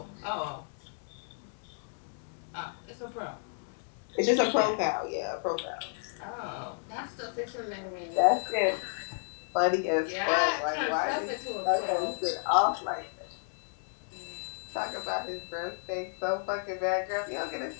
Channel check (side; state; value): right; silent; digital silence